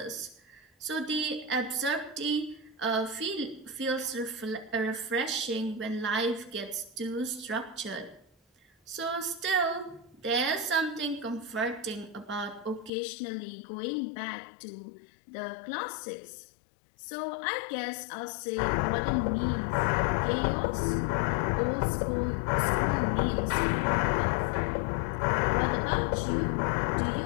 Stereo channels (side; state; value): right; drops out; at 12.9 s